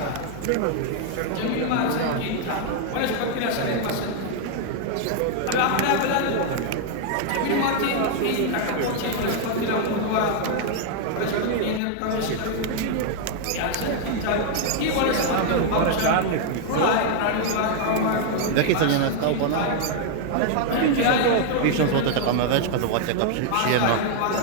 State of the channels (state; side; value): different; both; correlation 0.00